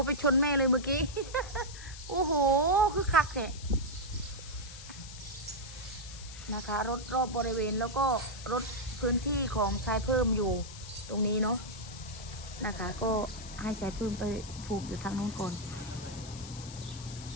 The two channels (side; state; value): left; noise; hiss, 14 dB below the sound